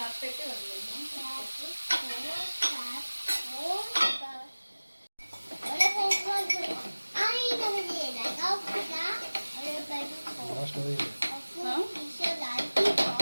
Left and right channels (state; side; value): inverted; both; correlation -1.00